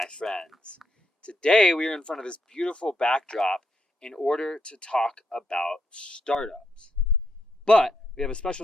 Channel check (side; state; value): both; normal; correlation 0.80